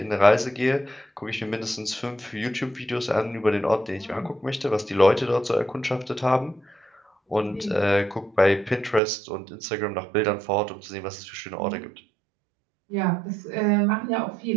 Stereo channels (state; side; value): drops out; left; at 9.0 s